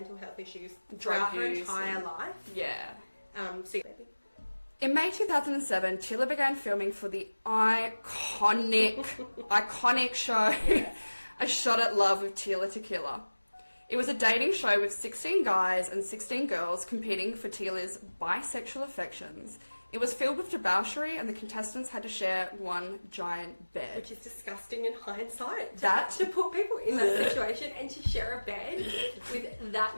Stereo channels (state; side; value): inverted; both; correlation -1.00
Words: health issues throughout her entire life. Yeah. So baby. In May 2007, Tila began filming for the iconic show A Shot at Love with Tila Tequila. It was a dating show with 16 guys and 16 girls competing for Tila's bisexual affections. It was filled with debauchery and the contestants had to share one giant bed. Which is disgusting in hindsight. To put people in that situation and to share a bed with that